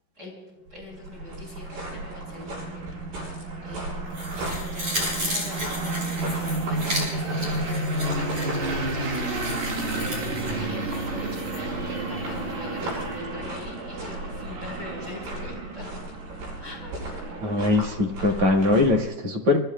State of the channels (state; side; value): late; left; 11 ms